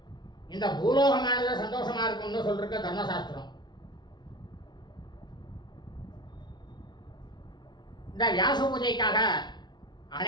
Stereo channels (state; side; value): late; right; 0.21 ms